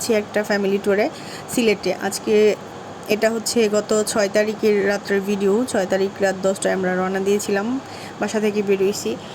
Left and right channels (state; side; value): identical; both; correlation 1.00